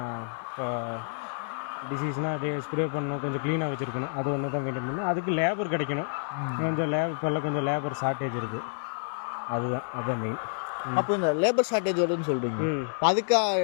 இப்போ டிசீஸ்னால் ஸ்ப்ரே பண்ணணும், கொஞ்சம் க்ளீனாக வச்சுருக்கணும், அது ஒன்று தான் மெயின்டைன் பண்ணணும். அதுக்கு லேபர் கிடைக்கணும், கொஞ்சம் இப்போல்லாம் கொஞ்சம் லேபர் ஷார்ட்டேஜ் இருக்குது, அதுதான் மெயின். அப்போ இந்த லேபர் ஷார்ட்டேஜ் வருதுன்னு சொல்கிறீங்க, அதுக்கு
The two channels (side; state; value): right; silent; digital silence